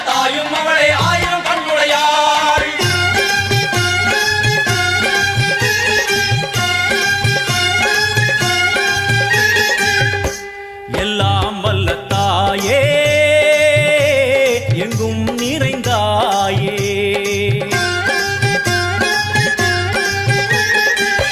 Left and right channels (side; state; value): both; identical; correlation 1.00